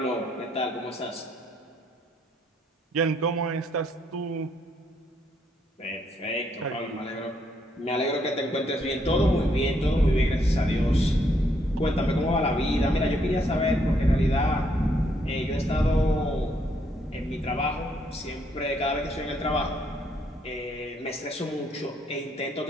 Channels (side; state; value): both; normal; correlation 0.72